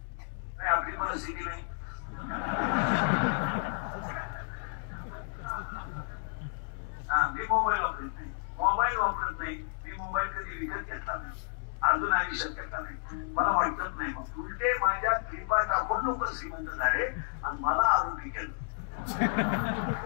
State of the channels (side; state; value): right; silent; digital silence